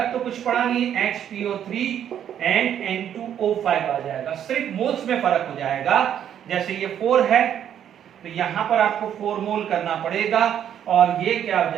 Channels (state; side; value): quieter; left; 9.7 dB